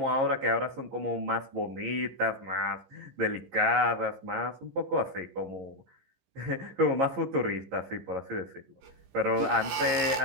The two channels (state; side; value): late; left; 15 ms